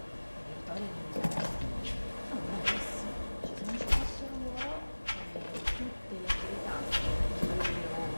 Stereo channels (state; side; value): inverted; both; correlation -1.00